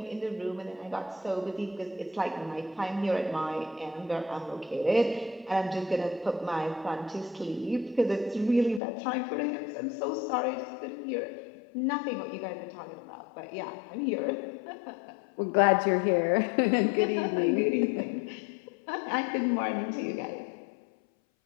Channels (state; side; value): drops out; right; at 8.8 s